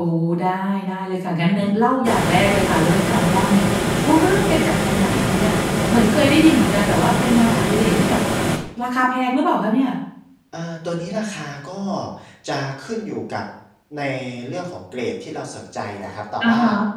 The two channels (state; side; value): identical; both; correlation 1.00